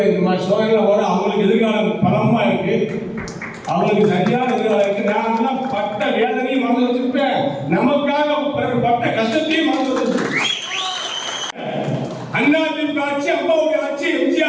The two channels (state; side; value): identical; both; correlation 1.00